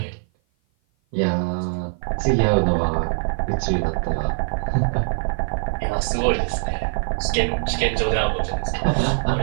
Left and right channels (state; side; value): silent; left; 55 dB below the other